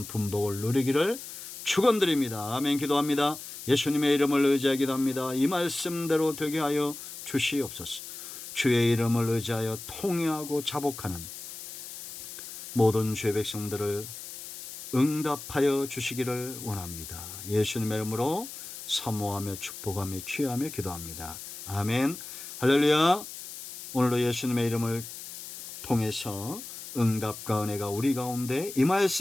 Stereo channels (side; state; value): left; noise; hiss, 11 dB below the sound